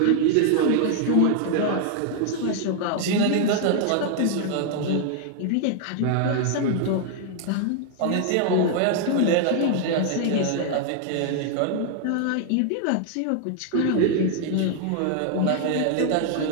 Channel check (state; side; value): different; both; correlation 0.00